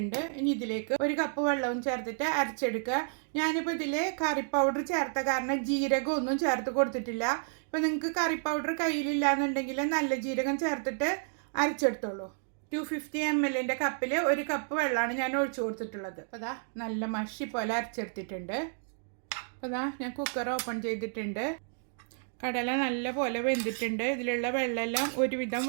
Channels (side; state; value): left; silent; digital silence